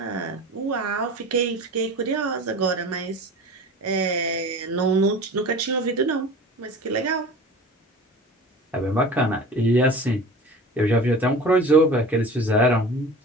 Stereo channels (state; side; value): normal; both; correlation 0.38